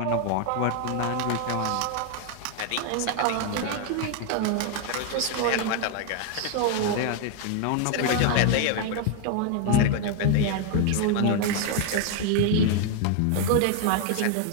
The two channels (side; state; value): both; different; correlation 0.01